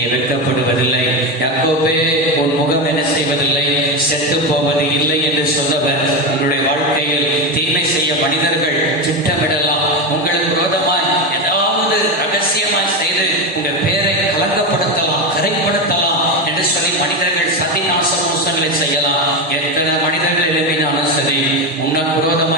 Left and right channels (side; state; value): both; normal; correlation 0.15